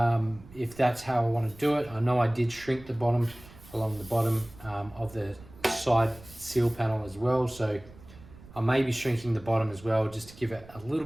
that's how I want to do it. I know I did shrink the bottom along the bottom of the side seal panel as well, so I may be shrinking the bottom as well just to give it a little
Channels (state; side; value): noise; right; rumble, 20 dB below the sound